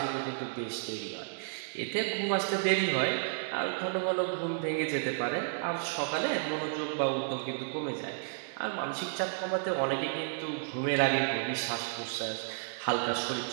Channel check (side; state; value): left; silent; 56 dB below the other